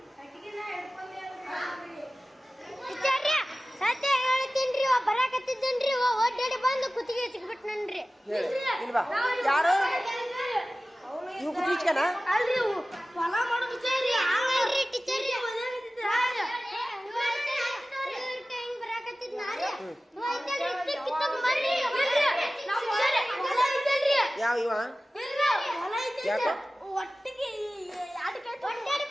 ಕಟ್ಟಿಗೆನ ಹಿಡ್ಕೊಂಡೇವ್ರಿ ಸತ್ಯ ಹೇಳ್ತೀನ್ರಿ ಬರಾಕತ್ತಿದ್ದೇನ್ರಿ ಒಡ್ಡಾಡಿ ಬಂದು ಕುತ್ತಿಗೆ ಸಿಕ್ಬಿಟ್ನನ್ರಿ ಇಲ್ವಾ ಯಾರು ಇವು ಕುಚ್ಕನ ಅಲ್ರಿ ಹೊಲ ಮಾಡೋ ವಿಚಾರ ಹಂಗಲ್ರಿ ಟೀಚರ್ ಹಿಂಗ್ ಬರಾಕತ್ತಿದ್ನಾರಿ ಯಾವ ಇವ ಯಾಕೋ ಒಟ್ಟಿಗೆ ಒಡ್ಡಾಡಿ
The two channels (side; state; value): both; normal; correlation 0.96